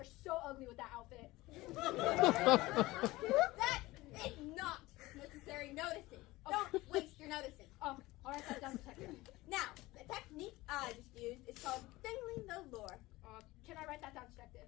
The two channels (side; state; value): right; quieter; 19.4 dB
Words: so ugly with that outfit. That is not necessary noticing. Don't waste your noticing. Oh, all right, that's done, detective. Now, the technique I just used is called dangling the lure. Can I write that down, detective?